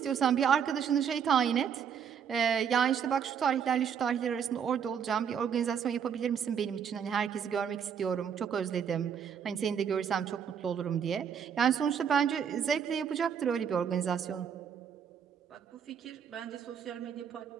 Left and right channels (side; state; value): left; quieter; 7.7 dB